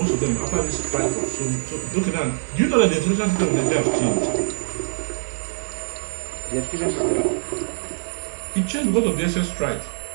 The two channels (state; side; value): silent; left; digital silence